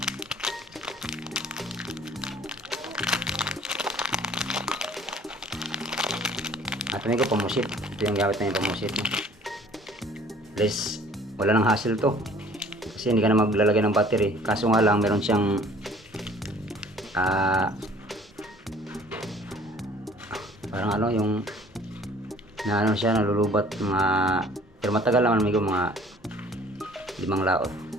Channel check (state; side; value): normal; both; correlation 0.53